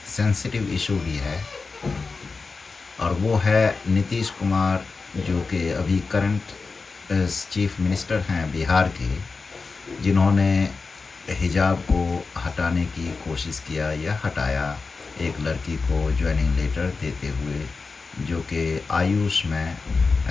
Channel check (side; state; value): right; quieter; 4.3 dB